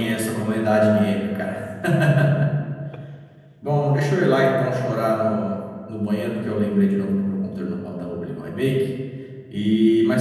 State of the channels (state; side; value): identical; both; correlation 1.00